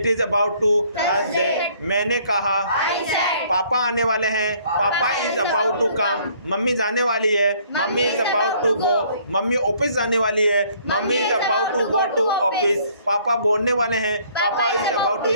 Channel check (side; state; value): both; inverted; correlation -0.61